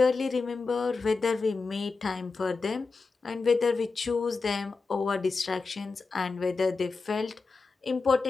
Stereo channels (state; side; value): quieter; right; 4.2 dB